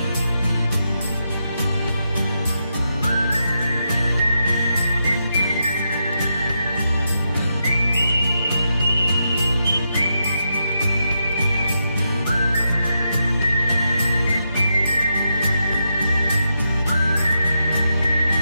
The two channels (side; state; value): both; inverted; correlation -0.84